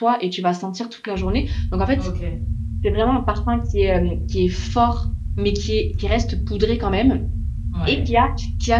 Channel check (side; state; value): both; identical; correlation 1.00